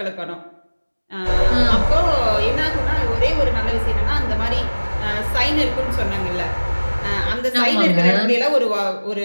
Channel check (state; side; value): inverted; both; correlation -1.00